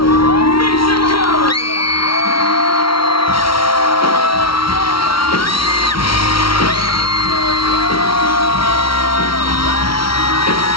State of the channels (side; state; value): right; late; 0.74 ms